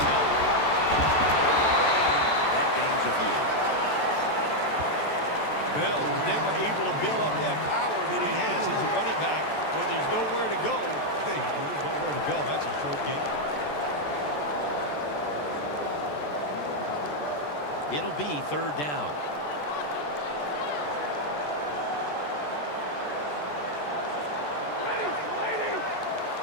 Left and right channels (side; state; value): right; late; 14 ms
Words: And that gains a few. Bell was never able to build up that power that he has as a running back when there's nowhere to go. Hey, there's nowhere to go. That's a short game. It'll be 3rd down.